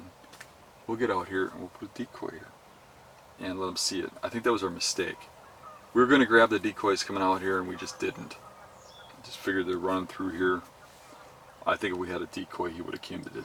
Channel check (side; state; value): both; identical; correlation 1.00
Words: we'll get out here and we'll put a decoy here and let him see it. I think that was our mistake. We were going to grab the decoys coming out here and we just didn't. Just figured they're running through here. I think if we had a decoy he would have came the